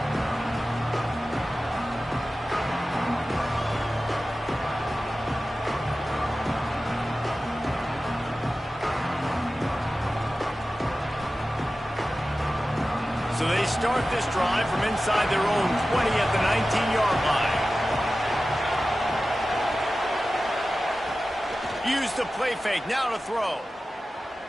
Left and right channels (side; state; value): both; normal; correlation 0.95